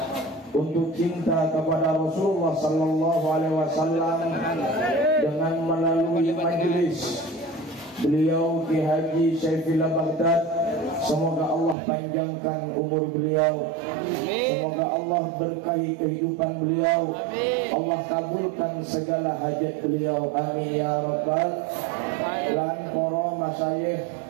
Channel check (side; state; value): left; drops out; at 11.8 s